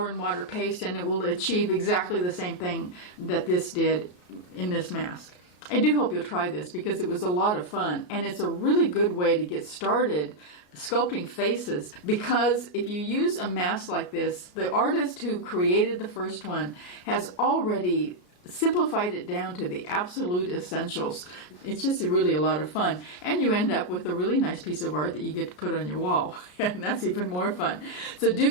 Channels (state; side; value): late; right; 33 ms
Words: and water paste, and it will achieve exactly the same thing that this did in this mask. I do hope you'll try this, because it was a lot of fun, and it's a really good way to get started sculpting faces, because if you use a mask like this, the artist who created the first one has already simplified it down to the absolute essentials. It's just really a lot of fun, and you end up with a really nice piece of art that you get to put on your wall, and that's even more fun. So do